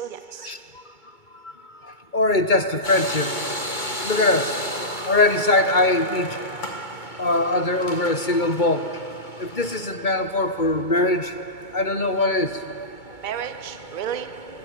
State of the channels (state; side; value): late; right; 2.2 ms